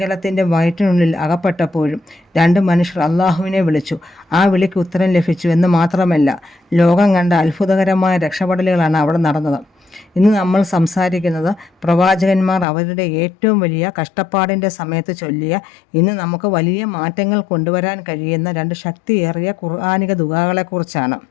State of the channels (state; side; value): drops out; right; at 12.7 s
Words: വയറ്റിനുള്ളിൽ അകപ്പെട്ടപ്പോഴും 2 മനുഷ്യർ അള്ളാഹുവിനെ വിളിച്ചു. ആ വിളിക്ക് ഉത്തരം ലഭിച്ചു എന്ന് മാത്രമല്ല, ലോകം കണ്ട അത്ഭുതകരമായ രക്ഷപ്പെടലുകളാണ് അവിടെ നടന്നത്. ഇന്ന് നമ്മൾ സംസാരിക്കുന്നത് പ്രവാചകന്മാർ അവരുടെ ഏറ്റവും വലിയ കഷ്ടപ്പാടിൻ്റെ സമയത്ത് ചൊല്ലിയ, ഇന്ന് നമുക്ക് വലിയ മാറ്റങ്ങൾ കൊണ്ടുവരാൻ കഴിയുന്ന 2 ശക്തിയേറിയ ഖുർആനിക ദുആകളെക്കുറിച്ചാണ്.